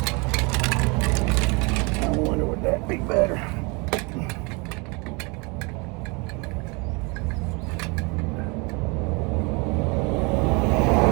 I wonder would that be better.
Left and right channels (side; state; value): left; quieter; 29.3 dB